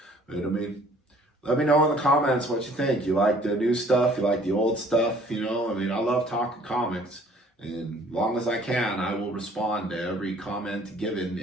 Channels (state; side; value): normal; both; correlation 0.56